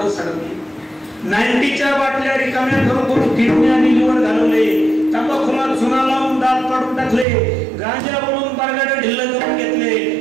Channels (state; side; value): drops out; left; at 7.2 s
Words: सडवले, 90च्या बाटल्या रिकाम्या करून किडनी आणि लिव्हर घालवले, तंबाखूला चुना लावून दात काढून टाकले, गांजा बनवून बारगाडे ढिल्ल करून घेतले,